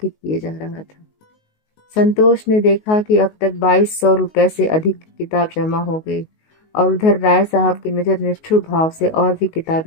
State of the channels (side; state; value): right; late; 19 ms